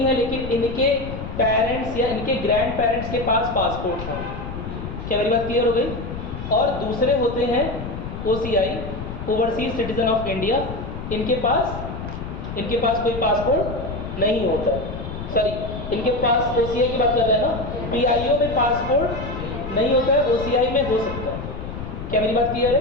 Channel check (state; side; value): noise; left; rumble, 8 dB below the sound